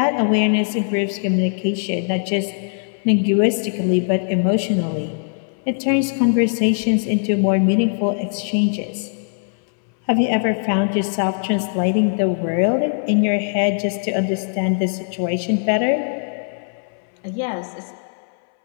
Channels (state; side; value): silent; right; 62 dB below the other